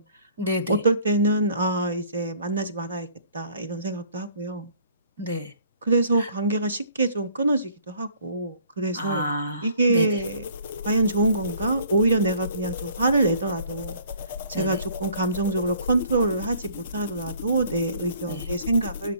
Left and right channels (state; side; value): inverted; both; correlation -0.56